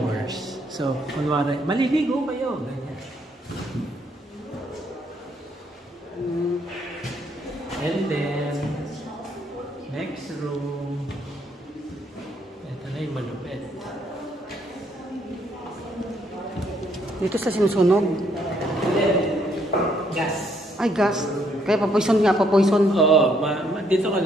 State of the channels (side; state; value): both; normal; correlation 0.70